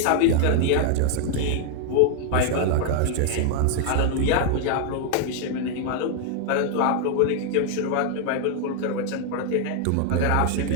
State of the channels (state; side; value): different; both; correlation 0.00